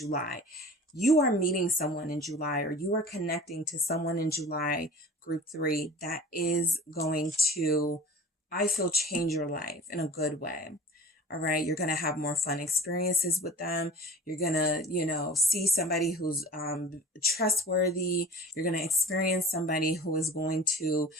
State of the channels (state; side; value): normal; both; correlation 0.40